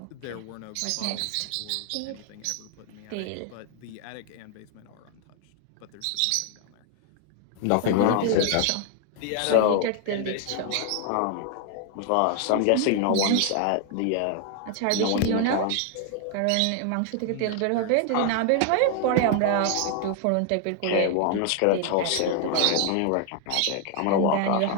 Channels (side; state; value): both; different; correlation 0.00